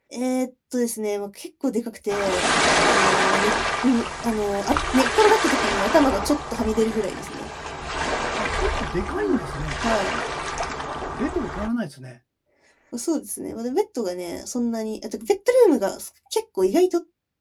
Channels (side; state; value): both; identical; correlation 1.00